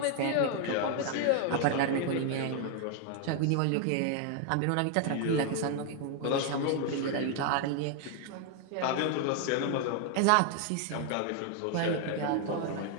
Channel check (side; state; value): both; different; correlation 0.00